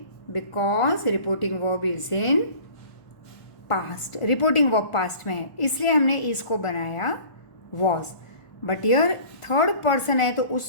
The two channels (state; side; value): late; right; 1.4 ms